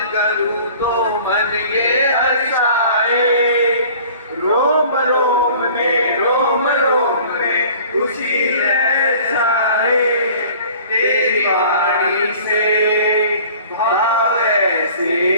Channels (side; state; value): both; inverted; correlation -0.48